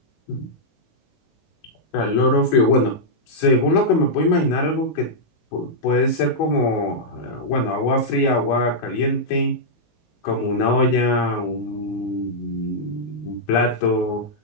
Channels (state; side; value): late; right; 19 ms